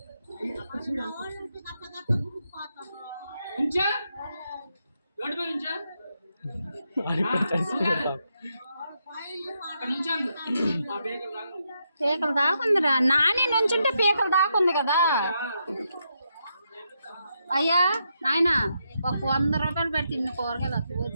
పీకలు దాకుందిరా నాని నుంచుంటే పీకలు దాకుంది కదా. అయ్యా నాయన ఒక 100 రూపాయలు పెడితే ఇన్ని కూరగాయలు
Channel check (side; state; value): both; inverted; correlation -0.81